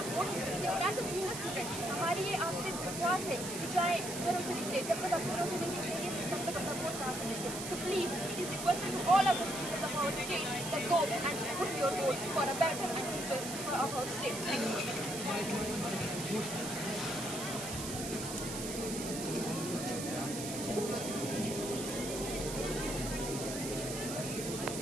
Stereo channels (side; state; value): right; noise; hiss, 6 dB below the sound